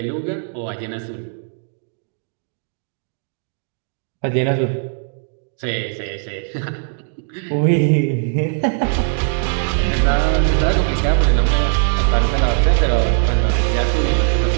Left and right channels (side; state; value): left; silent; digital silence